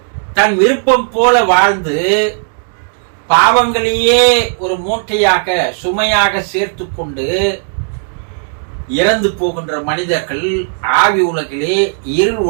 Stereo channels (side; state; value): left; silent; digital silence